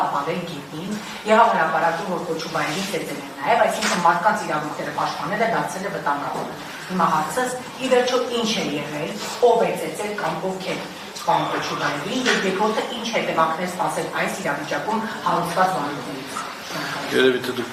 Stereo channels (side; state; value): both; identical; correlation 1.00